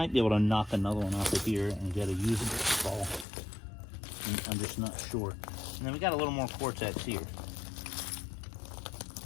be able to knock another one off of here and get a usable spall. I'm just not sure. And then we got a little more Cortex here.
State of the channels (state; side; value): drops out; right; at 3.2 s